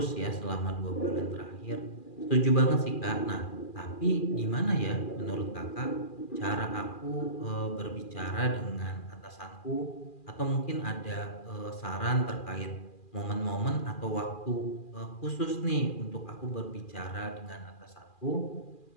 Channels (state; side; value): late; right; 2.4 ms